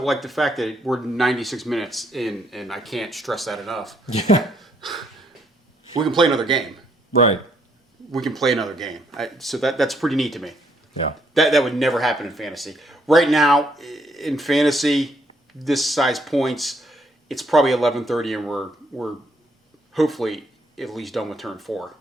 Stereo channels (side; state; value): both; normal; correlation 0.71